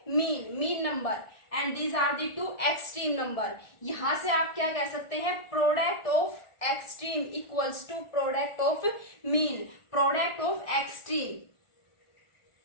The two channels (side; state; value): right; late; 1.4 ms